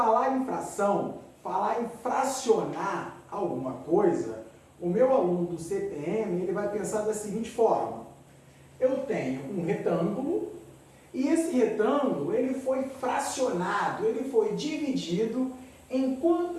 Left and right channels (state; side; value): identical; both; correlation 1.00